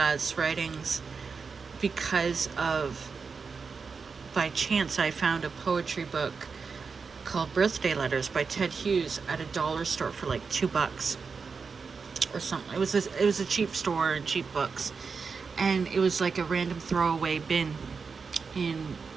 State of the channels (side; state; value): left; quieter; 5.2 dB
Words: writings because of, by chance, I found a poetry book called Birthday Letters by Ted Hughes at a dollar store for like $2 or something. It was a cheap store and cheap books, and it was like a random throwaway bin in